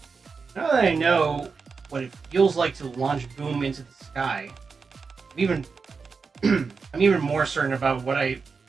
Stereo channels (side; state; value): left; quieter; 5.0 dB